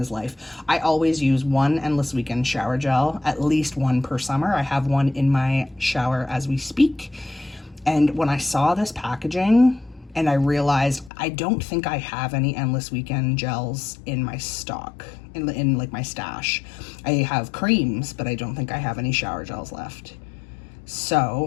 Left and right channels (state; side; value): drops out; right; at 11.1 s